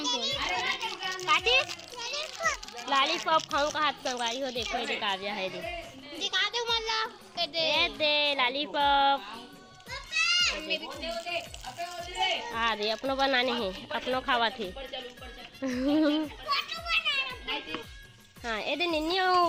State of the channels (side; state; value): both; identical; correlation 1.00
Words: काटी लॉलीपॉप खाऊं का हाथ संगवारी हो। देखो ये काव्या है दे दिखा दे मला दे लॉलीपॉप हाँ दे अपनो बनाने हैं अपनो खावा थे हाँ ये दे निन्नी